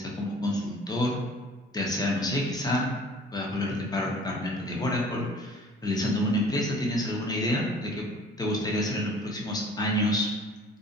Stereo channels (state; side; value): normal; both; correlation 0.49